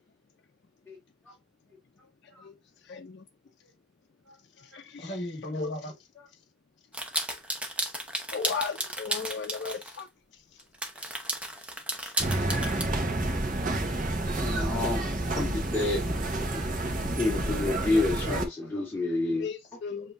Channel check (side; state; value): both; normal; correlation 0.58